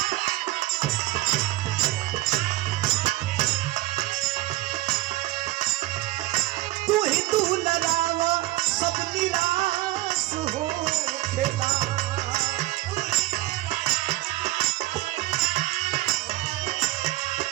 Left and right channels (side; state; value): left; quieter; 17.8 dB